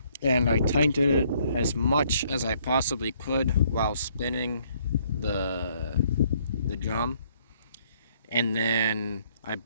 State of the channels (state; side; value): inverted; both; correlation -0.65